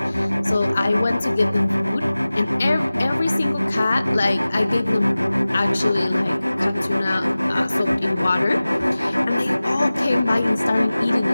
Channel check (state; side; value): inverted; both; correlation -0.98